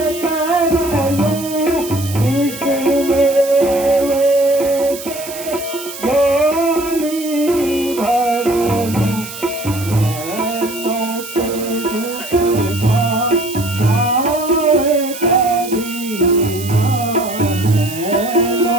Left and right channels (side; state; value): right; noise; hiss, 12 dB below the sound